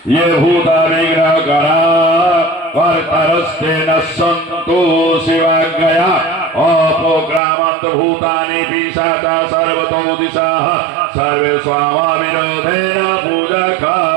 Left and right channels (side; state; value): left; drops out; at 7.4 s